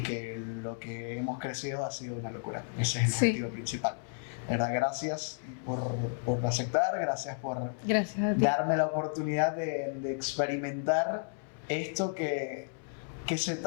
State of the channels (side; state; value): right; silent; 56 dB below the other